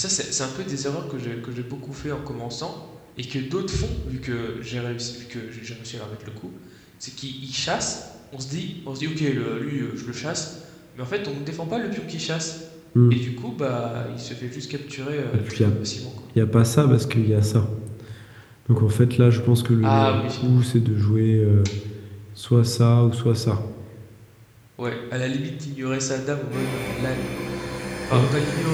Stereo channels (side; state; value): both; identical; correlation 1.00